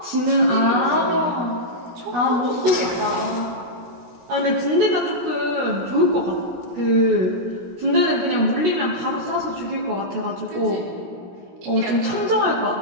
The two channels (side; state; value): left; late; 17 ms